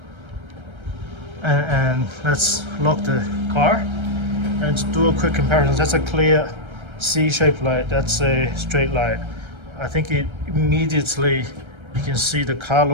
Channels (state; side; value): late; left; 1.3 ms